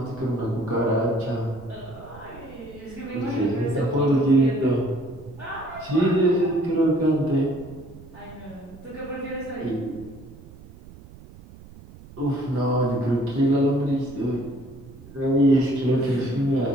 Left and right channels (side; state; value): right; noise; rumble, 19 dB below the sound